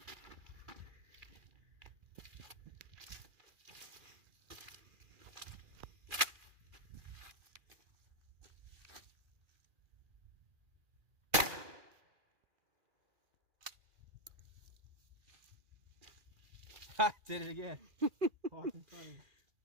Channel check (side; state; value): left; late; 2.4 ms